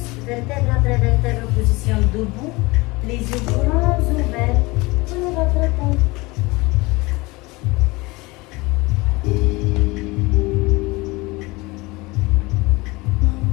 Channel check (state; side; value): quieter; right; 23.3 dB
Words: Vertèbre après vertèbre, position debout. Les yeux grands ouverts. Prenez votre temps.